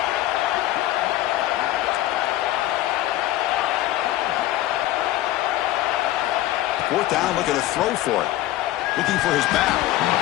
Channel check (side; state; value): right; quieter; 15.0 dB